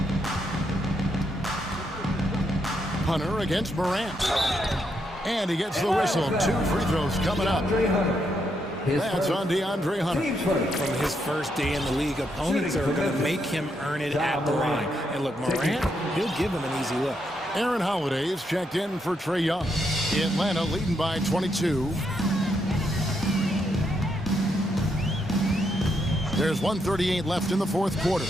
Hunter against Morant. And he gets the whistle. 2 free throws coming up. That's on DeAndre Hunter. From his first day in the league, opponents are going to make him earn it at the line. And look, Morant, he'll give him an easy look. Aaron Holiday is checked in for Trae Young. Atlanta leading by 22. There's 1:38 left in the 4th quarter.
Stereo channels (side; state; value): both; normal; correlation 0.79